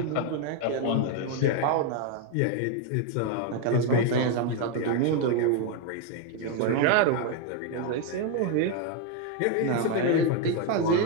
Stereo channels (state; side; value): different; both; correlation 0.01